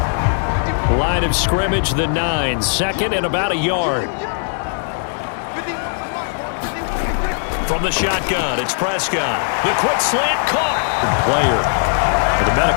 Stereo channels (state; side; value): silent; right; 59 dB below the other